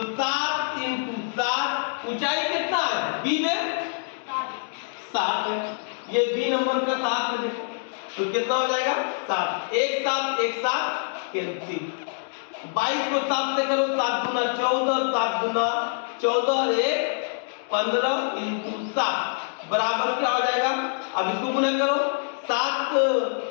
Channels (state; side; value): silent; right; digital silence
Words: 7 इंटू 7, ऊंचाई कितना है बी में 7 है, ये बी नंबर का 7 है, देखो तो कितना हो जाएगा 7, एक साथ कैंसिल, 22 को 7 से करो, 7 दूना 14, 7 दूना 14, 1 15 इंटू 7 बराबर क्या हो जाएगा, अब इसको गुना करो, 7